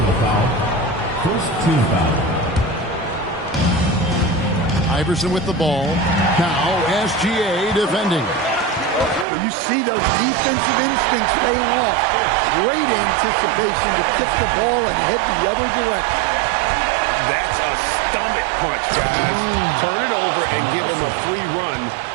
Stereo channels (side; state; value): left; drops out; at 9.2 s